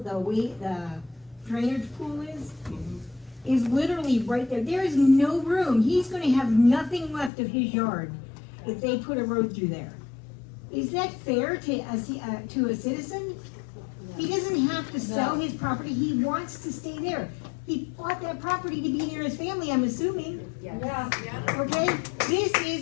drainage pool is literally right there. There is no room. He's gonna have nothing left of his yard if they put a road through there. Is that fair to a citizen? He doesn't have to sell his property. He wants to stay there. He bought that property to be near his family, I'm assuming. Yeah. Okay? This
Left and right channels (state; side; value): drops out; right; at 7.3 s